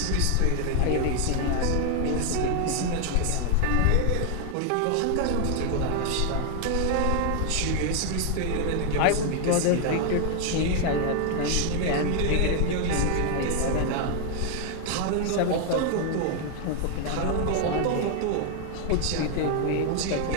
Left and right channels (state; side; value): different; both; correlation 0.00